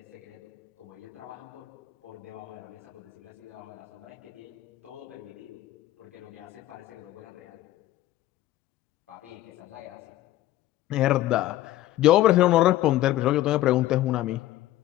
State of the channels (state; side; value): quieter; right; 15.1 dB